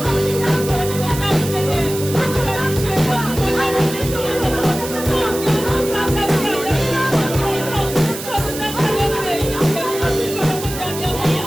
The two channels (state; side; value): noise; right; hiss, 10 dB below the sound